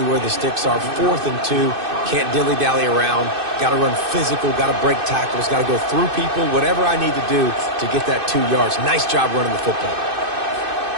where the sticks are. 4th and 2. Can't dilly-dally around. Got to run physical. Got to break tackles. Got to go through people. Whatever I need to do to get that 2 yards. Nice job running the football.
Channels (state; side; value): late; left; 2.6 ms